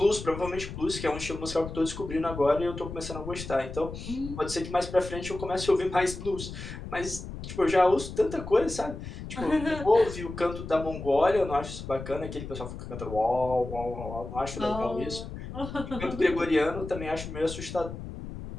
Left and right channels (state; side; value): noise; left; rumble, 9 dB below the sound